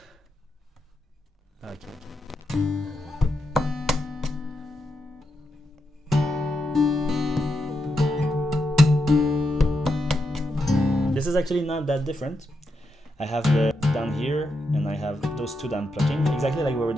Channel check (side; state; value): both; normal; correlation 0.84